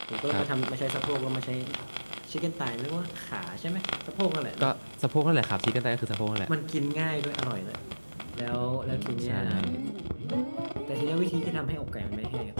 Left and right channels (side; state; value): both; inverted; correlation -1.00